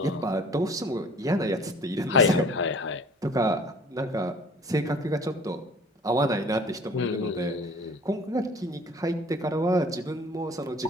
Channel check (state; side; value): normal; both; correlation 0.50